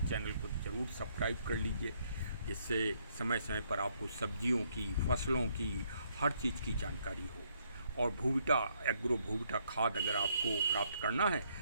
को ज़रूर सब्सक्राइब कर लीजिए, जिससे समय समय पर आपको सब्जियों की, फसलों की, हर चीज़ की जानकारी हो। और भूविटा एग्रो भूविटा खाद अगर आपको प्राप्त करना है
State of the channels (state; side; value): inverted; both; correlation -0.71